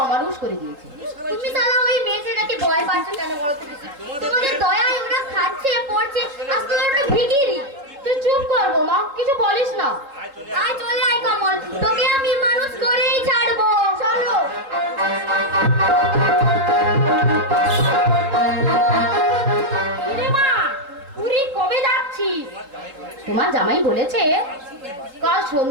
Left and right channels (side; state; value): left; late; 3.7 ms